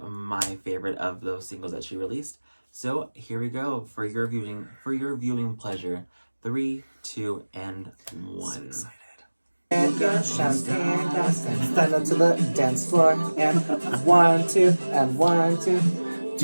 my favorite of those singles that she released. So, here we go for your viewing pleasure. 3, 2, and 1. So excited. And champagne glass and stand up to the dance floor and 1, 2, and 1, 2.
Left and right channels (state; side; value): inverted; both; correlation -1.00